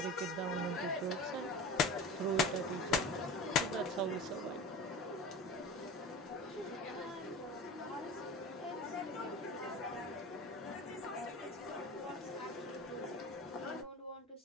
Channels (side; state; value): both; normal; correlation 0.33